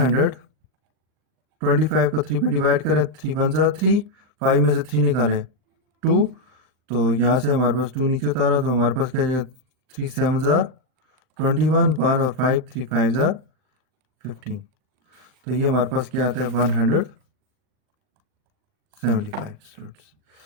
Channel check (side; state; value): left; late; 39 ms